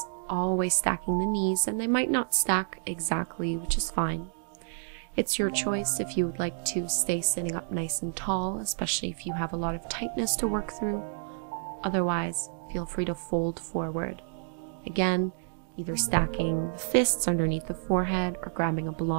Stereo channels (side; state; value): left; silent; digital silence